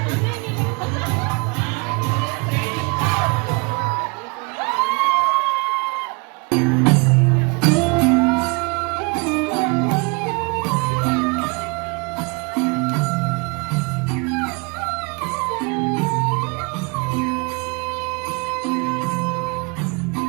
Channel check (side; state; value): left; quieter; 31.2 dB